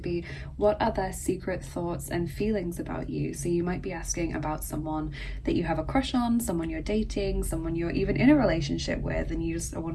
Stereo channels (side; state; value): both; identical; correlation 1.00